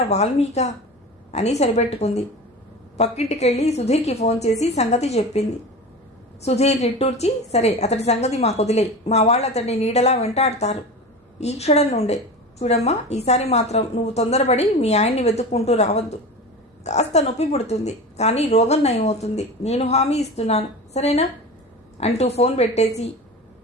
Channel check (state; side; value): normal; both; correlation 0.31